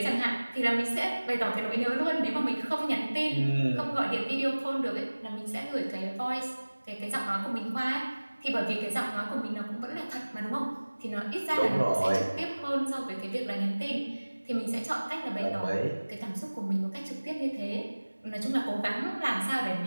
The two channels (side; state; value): both; inverted; correlation -1.00